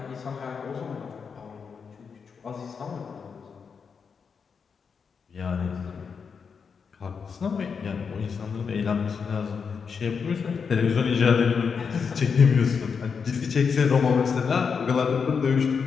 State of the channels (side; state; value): right; quieter; 5.9 dB